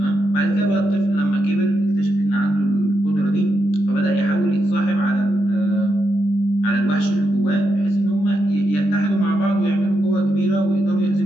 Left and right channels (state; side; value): late; right; 20 ms